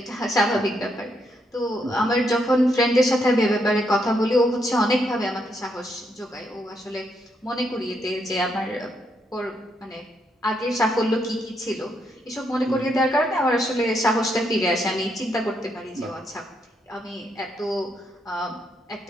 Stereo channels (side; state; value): both; normal; correlation 0.77